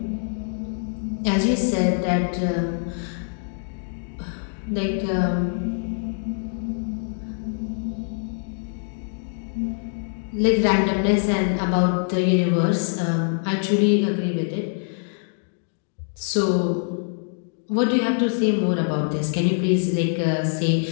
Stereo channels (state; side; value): silent; right; digital silence